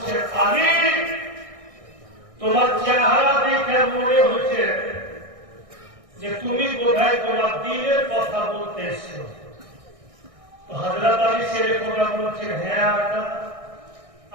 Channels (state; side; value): late; left; 1.6 ms